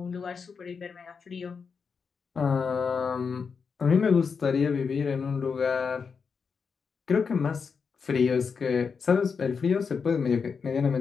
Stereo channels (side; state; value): right; quieter; 5.7 dB